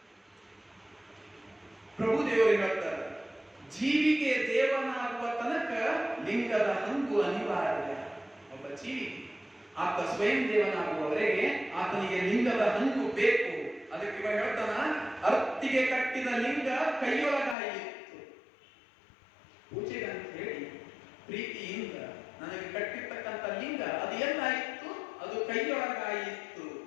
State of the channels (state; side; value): drops out; right; at 17.6 s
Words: ಪ್ರಭುದೇವರು ಹೇಳ್ತಾರೆ ಜೀವಿಗೆ ದೇವನಾಗುವ ತನಕ ಲಿಂಗದ ಹಂಗು ಅನಿವಾರ್ಯ. ಒಬ್ಬ ಜೀವಿ ಆತ ಸ್ವಯಂ ದೇವನಾಗುವವರೆಗೆ ಆತನಿಗೆ ಲಿಂಗದ ಹಂಗು ಬೇಕು. ಅದಕ್ಕೆ ಇವಾಗ ಹೇಳ್ತಾನ ಅರ್ತಿಗೆ ಕಟ್ಟಿದ ಲಿಂಗ ಕೈಯೊಳಗಾಯಿತು. ಪೂಜೆಗೆ ಅಂತ ಹೇಳಿ ಪ್ರೀತಿಯಿಂದ ನನಗೆ ಕಟ್ಟಿರ್ತಕ್ಕಂಥ ಲಿಂಗ ಅದು ಎಲ್ಲಾಯಿತು, ಅದು ಕೈಯೊಳಗಾಯಿತು.